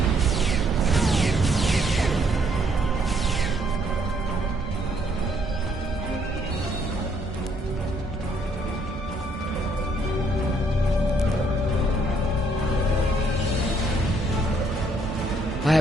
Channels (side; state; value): both; normal; correlation 0.68